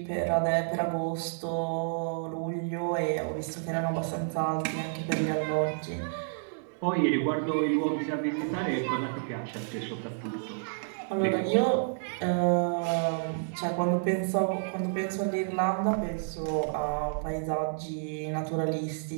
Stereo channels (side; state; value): left; silent; 58 dB below the other